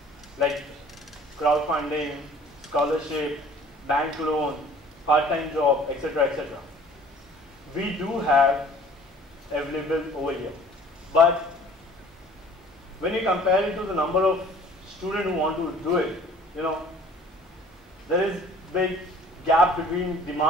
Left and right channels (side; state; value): both; normal; correlation 0.51